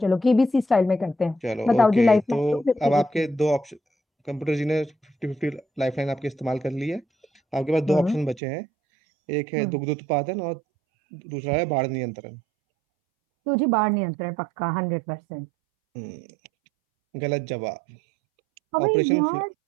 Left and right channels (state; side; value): drops out; left; at 8.4 s